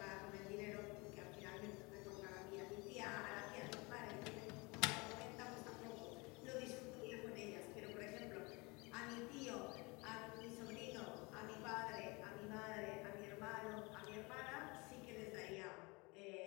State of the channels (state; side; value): quieter; right; 26.8 dB